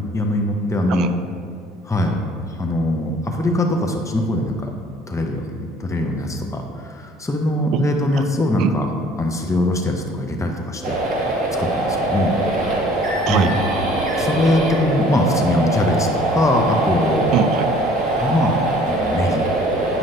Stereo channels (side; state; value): both; normal; correlation 0.55